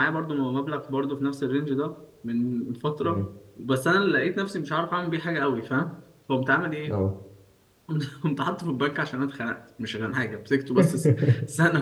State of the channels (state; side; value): identical; both; correlation 1.00